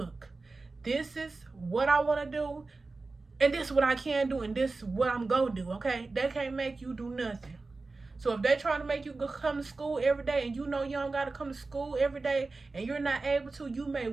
this is what I want to do, and this is what I can do, and this is what I'm going to do, okay? They can't make you do nothing. So if they're trying to make you go come to school every day, and you don't got to come to school every day, and you're not able to, you may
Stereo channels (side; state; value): left; quieter; 3.7 dB